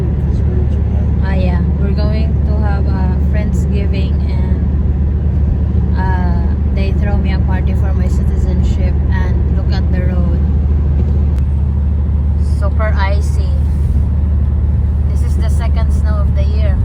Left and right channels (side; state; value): both; identical; correlation 1.00